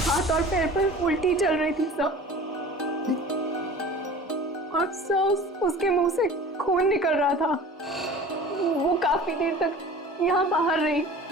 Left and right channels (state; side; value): normal; both; correlation 0.41